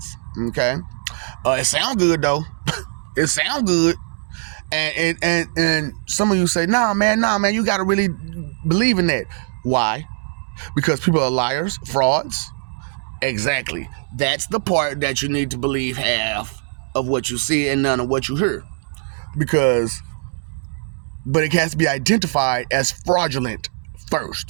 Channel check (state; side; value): silent; left; digital silence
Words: Okay. It sounds good though. It sounds good. And some of you say, nah, man, you got to really believe in that. Why? Because people are liars, frauds. Exactly. That's the part that you need to believe half of what you see and none of what you hear. But it has to be identified as fraudulent